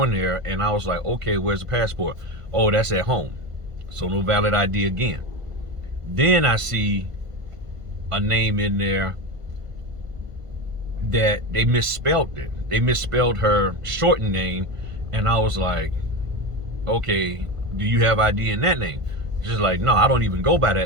there. And I was like, okay, where's the passport? Oh, that's at home. So no valid ID again. Then I see a name in there that they misspelled it. They misspelled her shortened name. And I was like, okay, do you have ID in that name? She's like, no, I don't even go by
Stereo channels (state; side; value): late; left; 1.5 ms